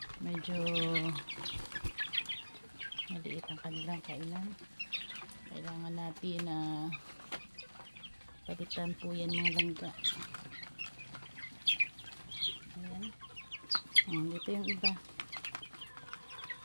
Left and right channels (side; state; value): both; inverted; correlation -1.00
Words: Medyo maliit ang kanilang kainan. Kailangan natin na palitan po yan mga langga. Ayan. Dito yung iba.